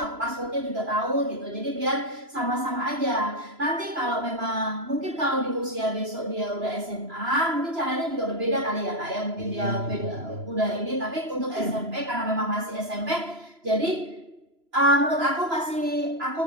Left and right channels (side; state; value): left; late; 3.0 ms